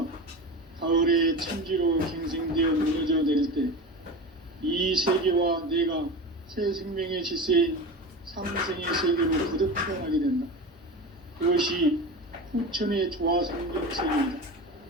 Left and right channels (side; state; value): both; normal; correlation 0.28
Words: 가을의 천지로 갱생되어 무너져 내릴 때 이 세계와 내가 새 생명의 질서인 상생의 세계로 거듭 태어나게 된다. 그것이 후천의 조화성경 세계이다.